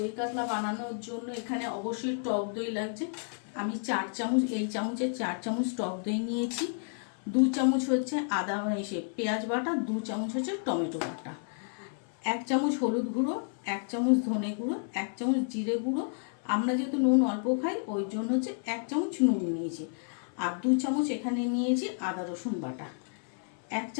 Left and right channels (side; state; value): right; silent; 57 dB below the other